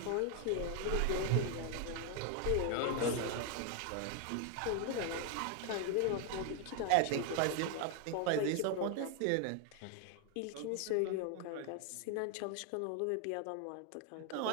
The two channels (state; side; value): different; both; correlation 0.00